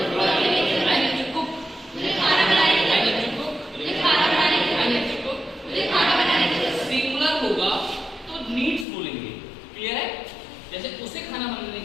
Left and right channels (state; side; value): drops out; right; at 8.8 s